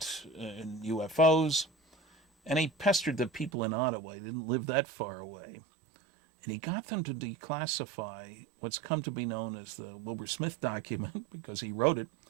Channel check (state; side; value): drops out; left; at 3.5 s